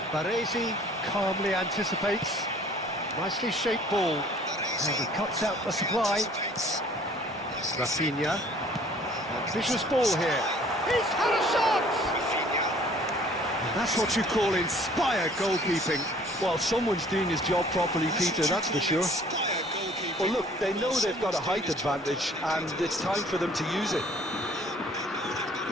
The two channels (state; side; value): normal; both; correlation 0.55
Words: Baresi calmly anticipates. Nicely shaped ball. And he cuts out the supply. Rafinha. Ambitious ball here. He's had a shot! And that's what you call inspired goalkeeping. Well, someone's doing his job properly, Peter, that's for sure. Well, look, they know they've got a height advantage, and it's time for them to use it.